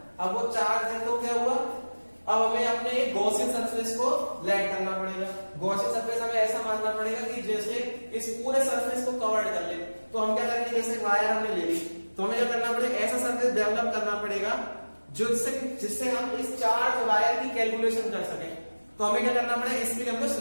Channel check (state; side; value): inverted; both; correlation -1.00